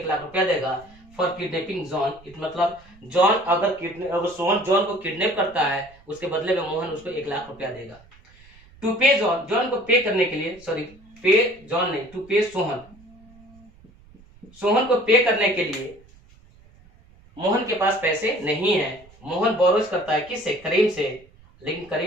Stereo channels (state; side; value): noise; right; rumble, 26 dB below the sound